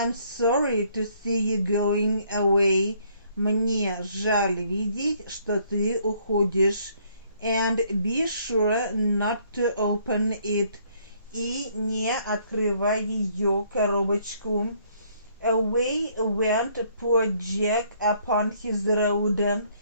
sorry to see you going away. Мне жаль видеть, что ты уходишь. And be sure not to open it. И не открывай ее коробочку. Away went poor Jack upon his road.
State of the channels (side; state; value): both; inverted; correlation -0.65